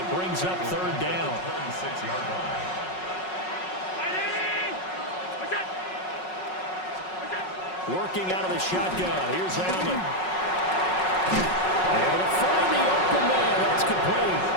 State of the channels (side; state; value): right; late; 5.4 ms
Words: brings up 3rd down. 36-yard line. Working out of the shotgun, here's Allen. Able to find the open man, that's complete.